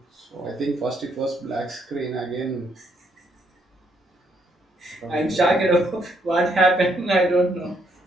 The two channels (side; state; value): both; normal; correlation 0.72